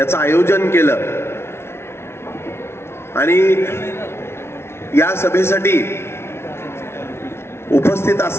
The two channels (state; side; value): late; right; 0.12 ms